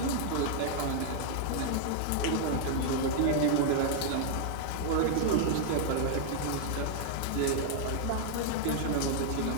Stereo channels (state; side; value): different; both; correlation 0.00